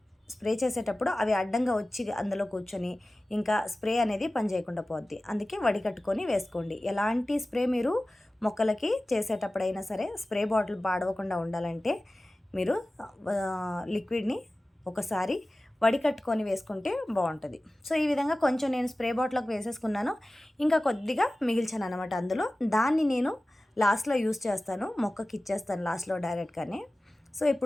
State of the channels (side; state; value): both; normal; correlation 0.96